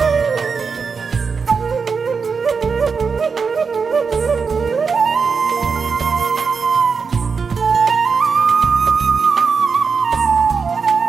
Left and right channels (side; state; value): left; quieter; 5.4 dB